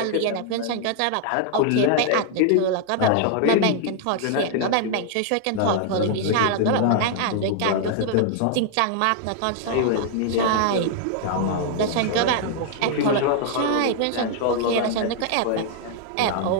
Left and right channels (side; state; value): both; different; correlation 0.00